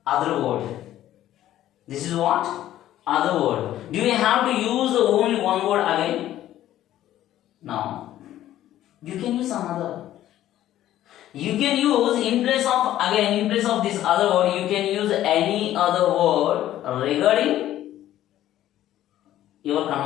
Other word. This is what? Other word. Do we have to use only one word again? No. You can use some other. You can use in place of this other word, you can use any other word regarding your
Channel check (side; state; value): right; quieter; 13.0 dB